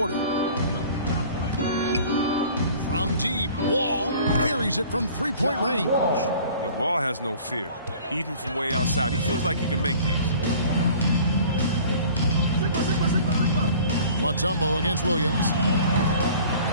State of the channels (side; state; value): both; inverted; correlation -0.47